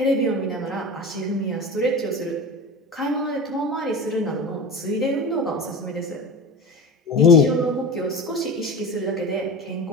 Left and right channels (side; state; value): both; normal; correlation 0.31